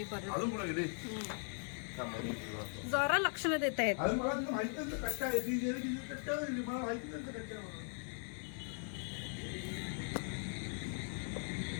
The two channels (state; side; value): silent; right; 51 dB below the other